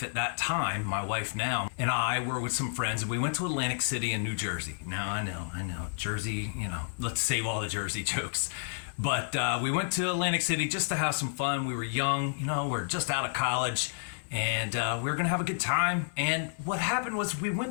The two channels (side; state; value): right; silent; 57 dB below the other